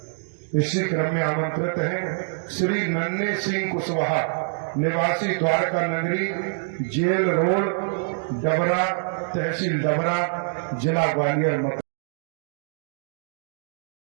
इसी क्रम में आमंत्रित हैं श्री नन्हे सिंह कुशवाहा, निवासी द्वारका नगरी, जेल रोड, डबरा, तहसील डबरा, जिला ग्वालियर।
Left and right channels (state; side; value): silent; left; digital silence